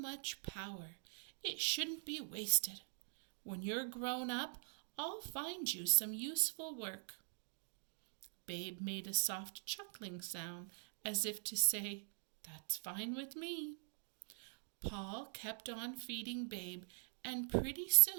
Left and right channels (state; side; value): silent; left; digital silence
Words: power, it shouldn't be wasted. When you're grown up, I'll find you some useful work." Babe made a soft chuckling sound as if to say, "That's fine with me." Paul kept on feeding Babe, and pretty